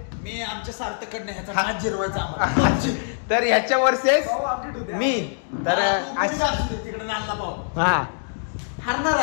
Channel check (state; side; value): silent; right; digital silence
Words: मी आमच्या सार्थकडनं ह्याचा 5 जिरवायचा तर ह्याच्या वर्सेस मी तर तिकडे नालला पाहू हा हरणार